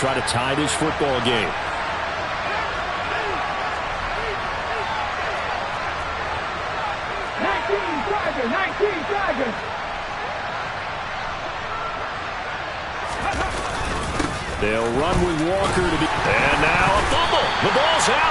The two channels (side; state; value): both; identical; correlation 1.00